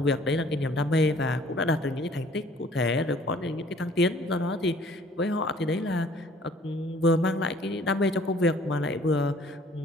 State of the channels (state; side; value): normal; both; correlation 0.55